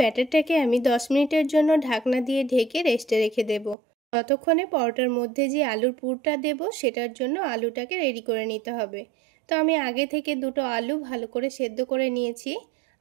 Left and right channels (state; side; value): drops out; left; at 3.8 s